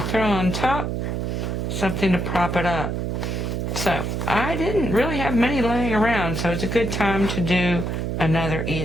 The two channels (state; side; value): noise; right; hum, 2 dB below the sound